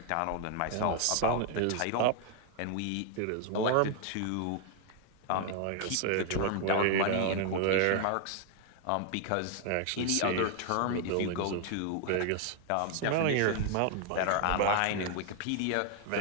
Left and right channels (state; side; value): different; both; correlation 0.00